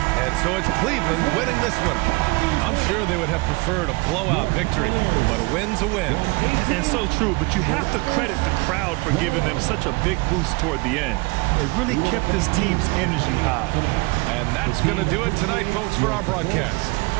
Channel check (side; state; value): left; quieter; 26.3 dB